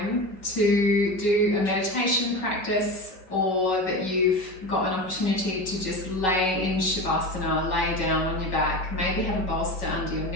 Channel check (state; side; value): late; right; 5.3 ms